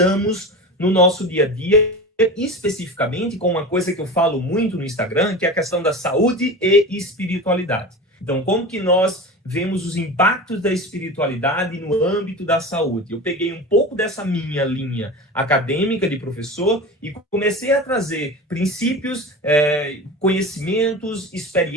no nosso dia a dia, especificamente com uma coisa que eu falo muito no Instagram, que é a questão da saúde e espiritualidade. Então, como que nós vemos os impactos da espiritualidade no âmbito da saúde? Eu peguei um pouco dessa minha linha acadêmica de professor e comecei a trazer princípios, conhecimentos,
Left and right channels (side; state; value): both; normal; correlation 0.30